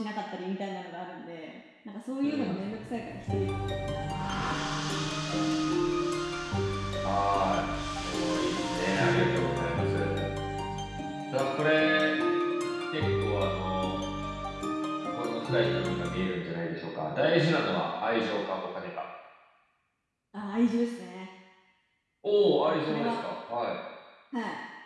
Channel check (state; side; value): identical; both; correlation 1.00